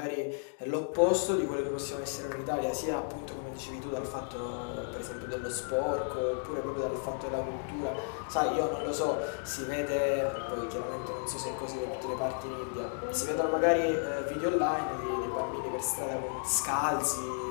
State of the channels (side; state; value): right; silent; 56 dB below the other